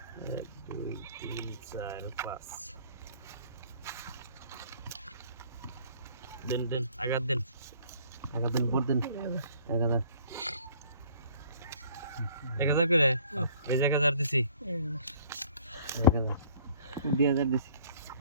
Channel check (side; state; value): both; inverted; correlation -0.55